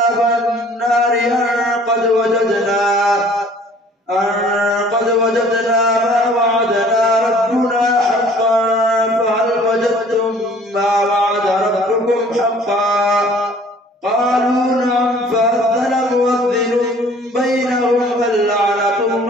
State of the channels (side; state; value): both; normal; correlation 0.53